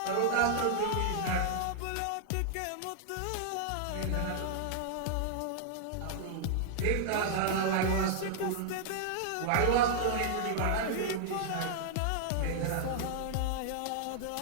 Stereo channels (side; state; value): both; different; correlation -0.01